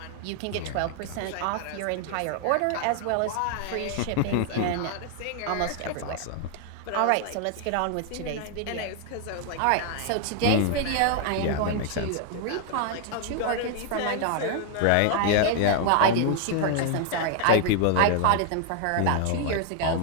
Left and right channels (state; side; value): different; both; correlation 0.00